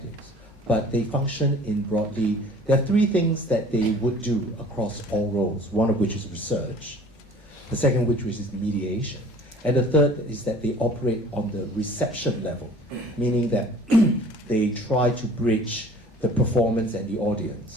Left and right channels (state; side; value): normal; both; correlation 0.49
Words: but they function in broadly. There are three things that they would do across all roles. One of which is research, the second which is mediation, and the third is that they operate on the reception level, meaning that they try to bridge the performance and the